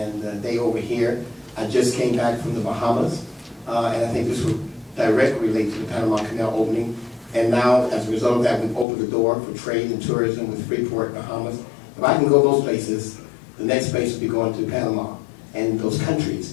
they over here. I just came back from the Bahamas, and I think this would directly relate to the Panama Canal opening. And now, as a result of that, we've opened the door for trade and tourism with Freeport, Bahamas. If I can go those places, the next place will be going to Panama and those countries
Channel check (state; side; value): drops out; right; at 8.8 s